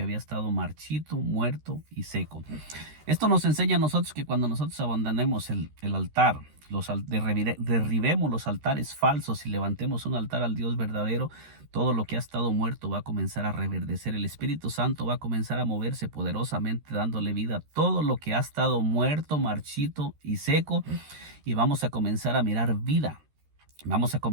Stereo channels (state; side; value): late; left; 13 ms